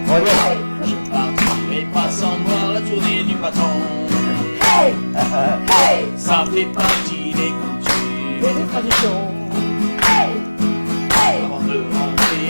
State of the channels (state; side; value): inverted; both; correlation -1.00